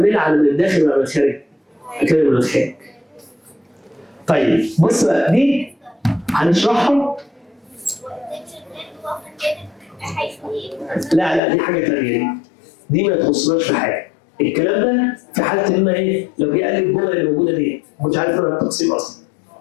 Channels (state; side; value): drops out; right; at 11.4 s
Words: على من الداخل ولا من الخارج؟ هكمل من الخارج. طيب بص بقى دي هنشرحها. لا دي حاجه ثانيه. دي ما تخصناش في حاجه. الكلام ده في حاله ان ايه؟ لو جه قال لي الجمله اللي موجوده دي ما كنتش عارف انا التقسيم اصلا.